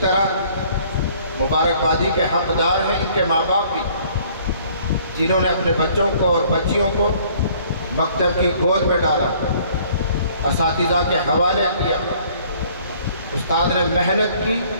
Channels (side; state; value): both; inverted; correlation -0.57